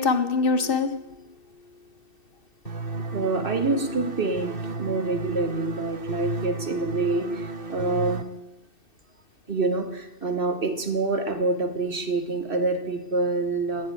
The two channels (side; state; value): right; late; 2.6 ms